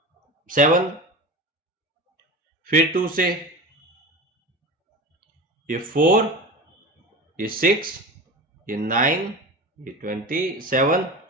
फिर 2 से ये 4, ये 6, ये 9, ये 27।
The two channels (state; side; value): normal; both; correlation 0.30